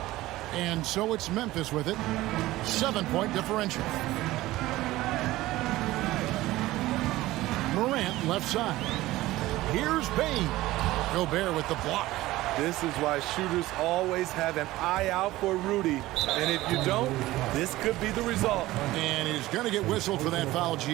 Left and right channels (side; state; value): left; quieter; 17.3 dB